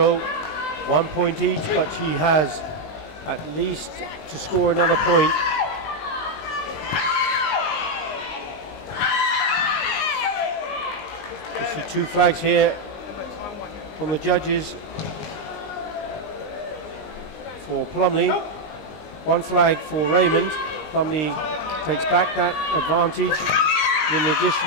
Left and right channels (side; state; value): right; late; 19 ms